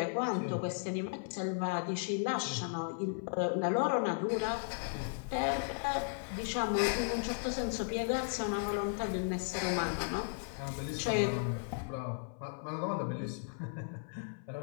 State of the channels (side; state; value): right; silent; 54 dB below the other